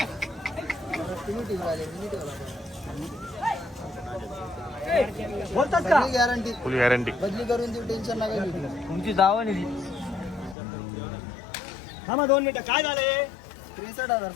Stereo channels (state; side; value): drops out; right; at 10.6 s